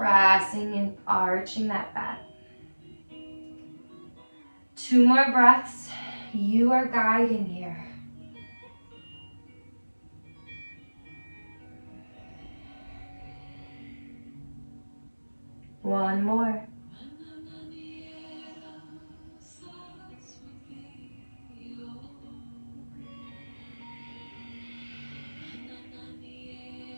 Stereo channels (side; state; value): both; inverted; correlation -1.00